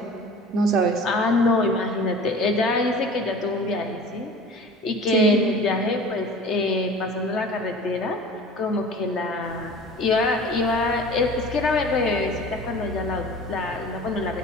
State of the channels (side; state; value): both; normal; correlation 0.41